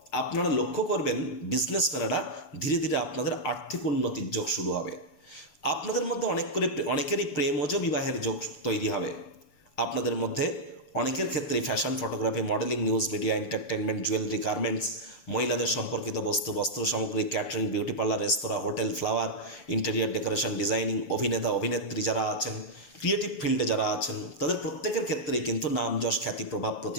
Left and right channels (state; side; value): late; right; 6.7 ms